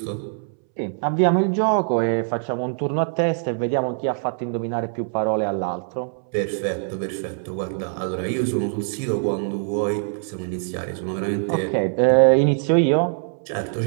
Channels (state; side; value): silent; left; 63 dB below the other